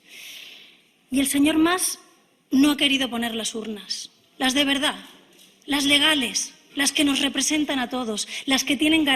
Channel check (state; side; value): identical; both; correlation 1.00